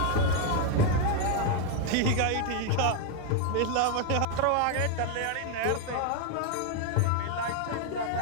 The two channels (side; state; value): both; different; correlation 0.01